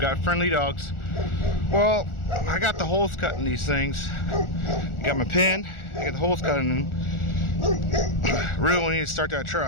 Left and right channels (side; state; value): right; late; 1.4 ms